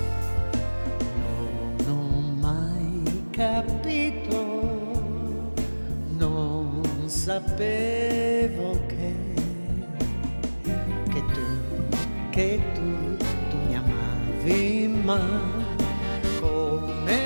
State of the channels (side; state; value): both; inverted; correlation -1.00